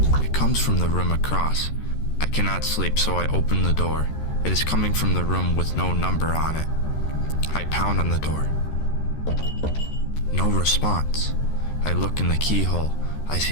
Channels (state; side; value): late; right; 13 ms